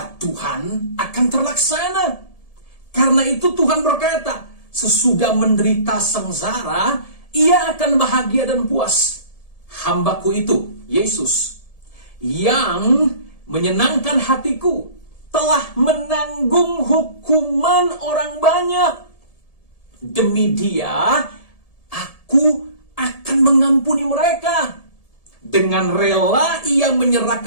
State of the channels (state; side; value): late; right; 1.7 ms